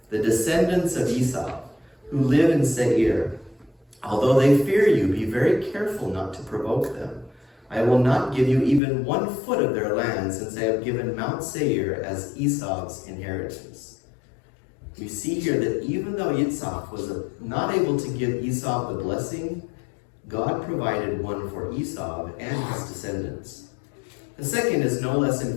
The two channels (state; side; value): drops out; right; at 8.8 s